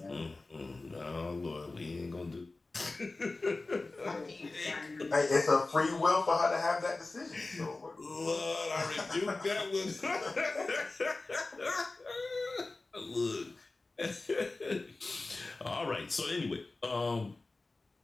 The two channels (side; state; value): right; quieter; 3.3 dB